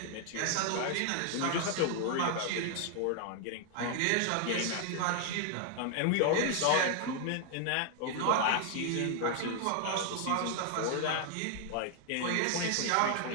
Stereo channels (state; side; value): different; both; correlation 0.00